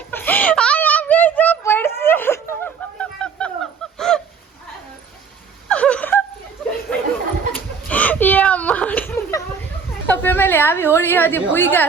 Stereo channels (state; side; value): quieter; left; 5.9 dB